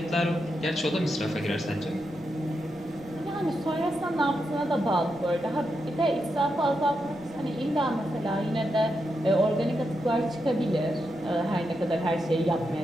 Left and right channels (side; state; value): right; noise; rumble, 23 dB below the sound